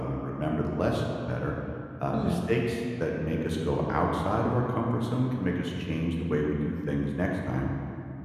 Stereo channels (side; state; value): both; identical; correlation 1.00